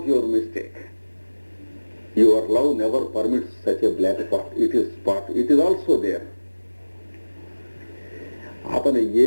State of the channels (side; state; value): both; inverted; correlation -1.00